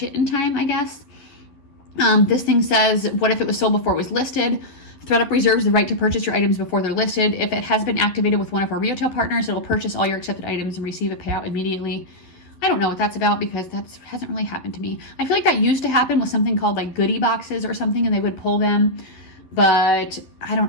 it in time, I guess. This thing says, what if it was sold before it was listed? Thredup reserves the right to purchase your items before they're listed. If it has been activated with one of our retail partners, it'll purchase all your accepted items and receive a payout immediately. I don't know what that's about because that hasn't really happened to me. I feel like that used to happen with something called like goodie boxes or something, and they would pull them, but I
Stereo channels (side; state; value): right; late; 11 ms